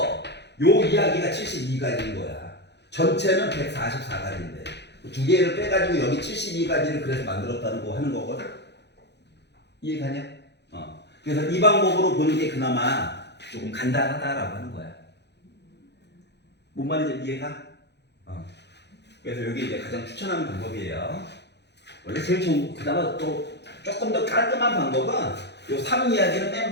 요 이야기가 72가지인 거야. 전체는 144가지인데 두 개를 빼가지고 여기 72가지를 그래서 만들었다는 거 하는 거거든. 이해가냐? 그래서 이 방법으로 보는 게 그나마 조금 간단하다라고 하는 거야. 뭔 말인지 이해가? 그래서 여기 이제 가장 추천하는 방법이에요. 원래 제일 좋은, 그나마 또 조금 더 깔끔한 방법은 요 3 이야기는 맨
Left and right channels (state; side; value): late; right; 0.50 ms